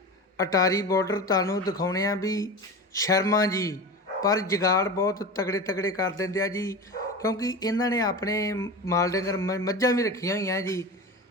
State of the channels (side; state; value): both; normal; correlation 0.28